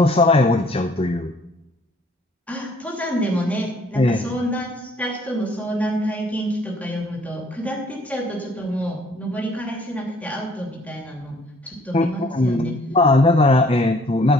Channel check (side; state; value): both; normal; correlation 0.59